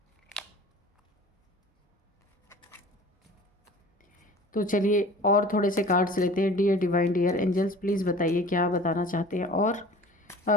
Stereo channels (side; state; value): both; normal; correlation 0.43